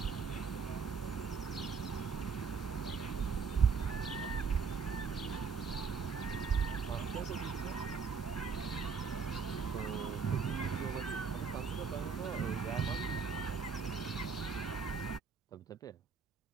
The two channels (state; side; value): quieter; left; 5.6 dB